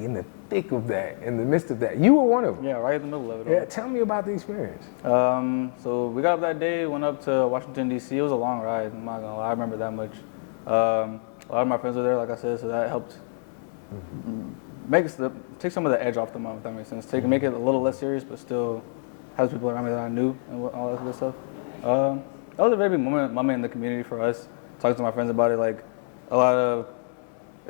in the thick of that, in the midst of that. You were one of them. Yeah, right in the middle of it all. Yeah, tell me about the experience. So we got up that day, went up to Washington, D.C. It was a long ride, I'm not gonna lie, I remember that much. A lot of my friends were there, like I said, so that helped take some of the edge off the month, if that makes sense. Make it a little less serious, but still have people around me that I knew and all that good stuff. That was a very big moment in the community for us, talking to my friends about it, like a lot of,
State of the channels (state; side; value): silent; right; digital silence